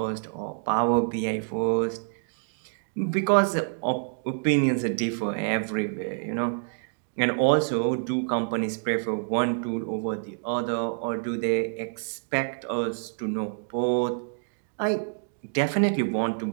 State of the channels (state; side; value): silent; left; digital silence